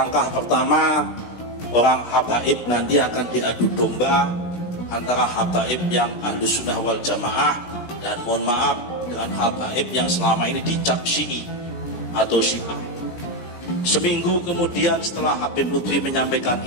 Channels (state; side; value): late; right; 17 ms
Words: pertama orang Habaib nanti akan diadu domba antara Habaib yang Ahlus Sunnah wal Jamaah dan mohon maaf dengan Habaib yang selama ini dicap Syi'i atau Syiah. Seminggu kemudian setelah Habib Lutfi menyampaikan